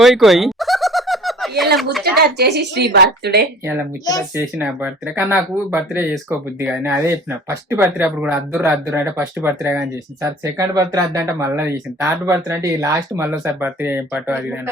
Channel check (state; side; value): normal; both; correlation 0.47